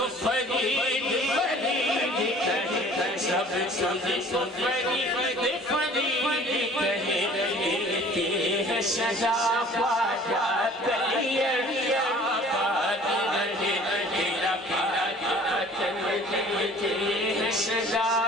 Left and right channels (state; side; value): normal; both; correlation 0.50